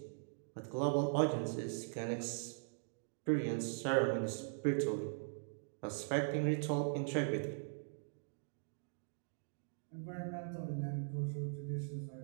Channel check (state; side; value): silent; left; digital silence